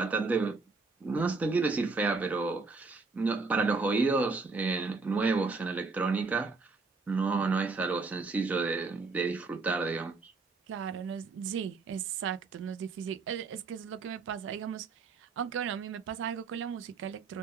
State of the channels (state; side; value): quieter; left; 4.2 dB